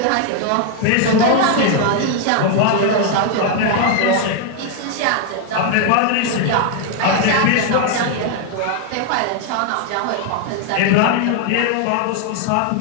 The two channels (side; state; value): both; different; correlation 0.00